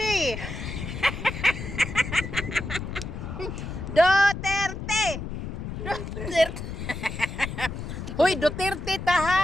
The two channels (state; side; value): noise; left; rumble, 7 dB below the sound